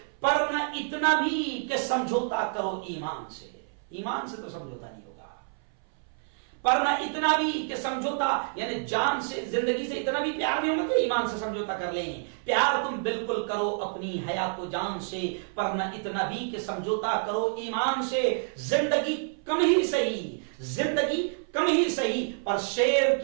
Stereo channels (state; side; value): silent; left; 59 dB below the other